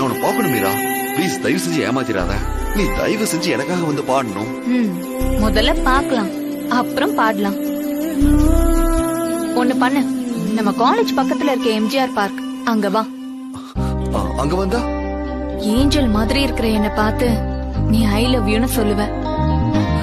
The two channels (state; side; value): identical; both; correlation 1.00